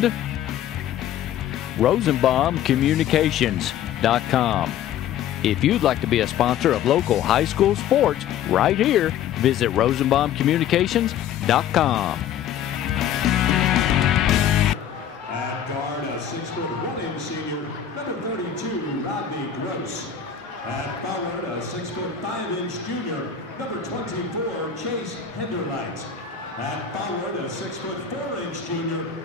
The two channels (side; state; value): right; quieter; 9.3 dB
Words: RosenbaumCommunications.com. If you'd like to be a sponsor of local high school sports right here, visit RosenbaumCommunications.com. At guard, a 6'1" senior, number 32, Rodney Gross. At forward, a 6'5" junior, number 24, Chase Henderlight. At forward, a 6'4" junior,